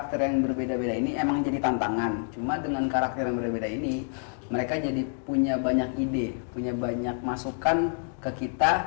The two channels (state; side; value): silent; right; 60 dB below the other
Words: yang berbeda-beda ini emang jadi tantangan, cuma dengan karakter yang berbeda ini mereka jadi punya banyak ide, punya banyak masukan ke